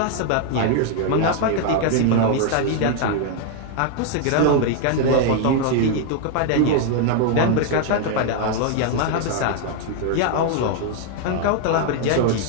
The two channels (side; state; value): both; different; correlation 0.00